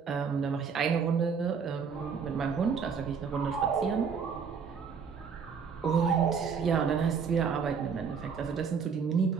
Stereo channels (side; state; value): left; quieter; 6.1 dB